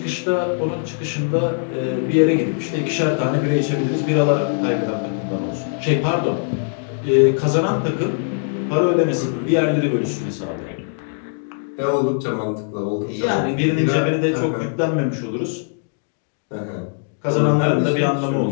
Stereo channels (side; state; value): right; silent; digital silence